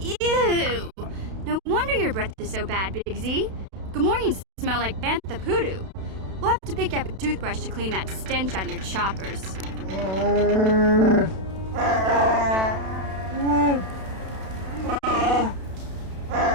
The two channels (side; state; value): left; late; 32 ms